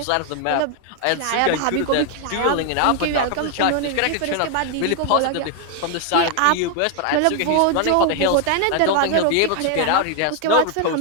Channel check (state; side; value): different; both; correlation 0.00